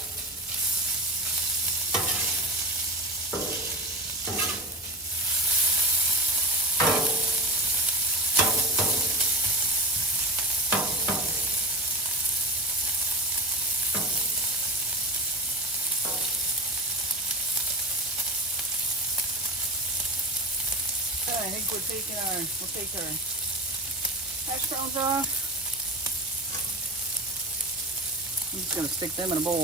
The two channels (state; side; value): normal; both; correlation 0.27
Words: I think we'll take our hash browns off. I'm just going to stick them in a bowl.